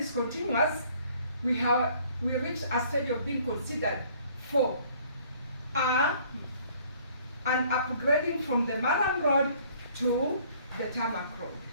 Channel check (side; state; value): both; inverted; correlation -0.58